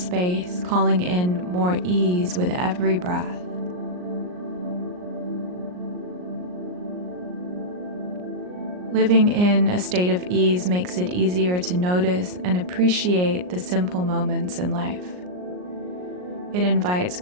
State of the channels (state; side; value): late; left; 39 ms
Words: calling in more ease with every breath. Living in a state of ease makes it easier to notice and appreciate the simple moments in life. It invites